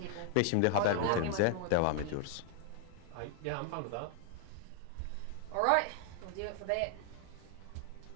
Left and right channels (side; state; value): both; different; correlation 0.00